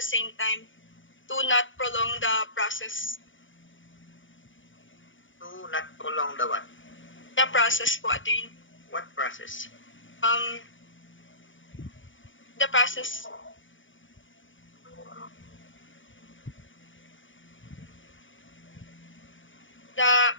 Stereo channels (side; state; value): right; late; 0.56 ms